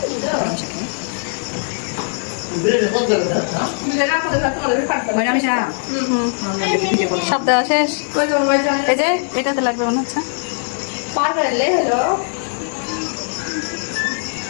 সব দেওয়া শেষ। এই যে এটাতে লাগবে মনে হচ্ছে।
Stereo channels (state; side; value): silent; right; digital silence